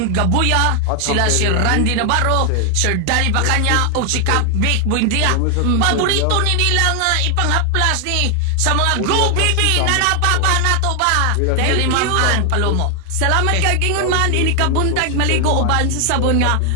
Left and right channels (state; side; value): different; both; correlation 0.00